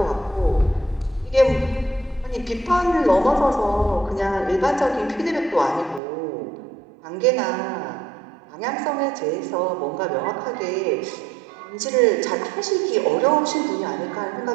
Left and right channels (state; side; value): drops out; left; at 6.0 s